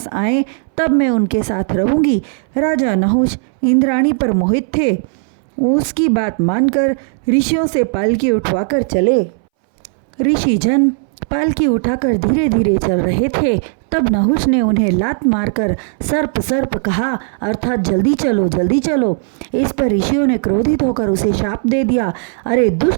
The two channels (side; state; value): left; silent; 65 dB below the other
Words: आए, तब मैं उनके साथ रहूंगी। राजा नहुष इंद्राणी पर मोहित थे। उसकी बात मानकर ऋषियों से पालकी उठवाकर चले। ऋषि जन पालकी उठाकर धीरे धीरे चल रहे थे। तब नहुष ने उन्हें लात मारकर सर्प सर्प कहा, अर्थात जल्दी चलो जल्दी चलो। इस पर ऋषियों ने क्रोधित होकर उसे शाप दे दिया, अरे